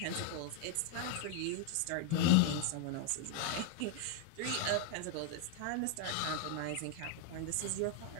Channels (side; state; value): both; different; correlation 0.00